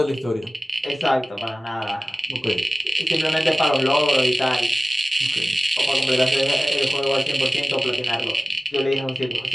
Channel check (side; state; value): both; normal; correlation 0.97